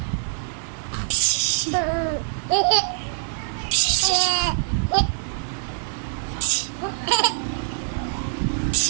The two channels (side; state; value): left; silent; 55 dB below the other